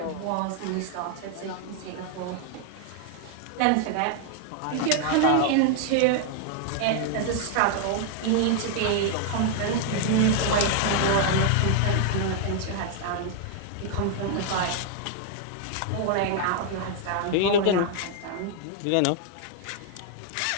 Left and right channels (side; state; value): both; different; correlation 0.00